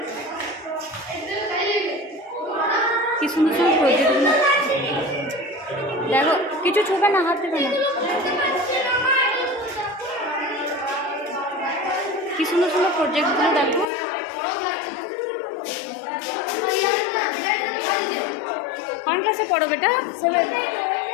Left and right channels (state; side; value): drops out; right; at 13.9 s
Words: কি সুন্দর সুন্দর প্রজেক্টগুলো দেখো। কিছু ছুবে না, হাত দেবে না। কি সুন্দর সুন্দর প্রজেক্টগুলো দেখো। কোন ক্লাসে পড়ো বেটা?